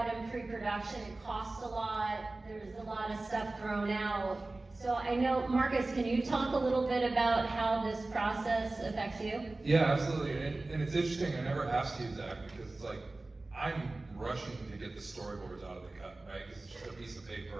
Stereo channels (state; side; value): quieter; left; 3.1 dB